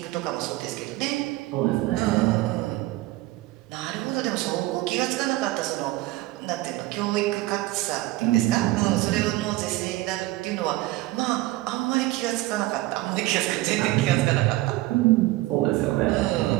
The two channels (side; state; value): left; quieter; 18.1 dB